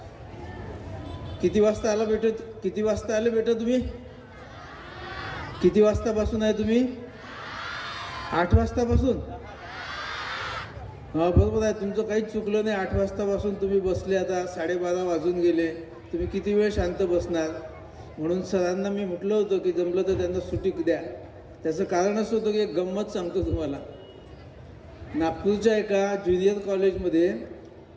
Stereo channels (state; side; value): identical; both; correlation 1.00